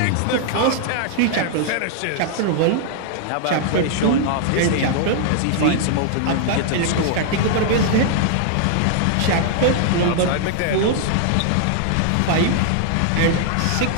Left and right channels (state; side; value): different; both; correlation 0.00